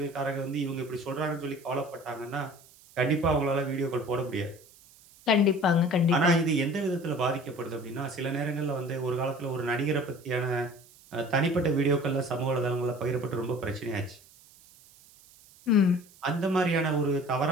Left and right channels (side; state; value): right; noise; hiss, 25 dB below the sound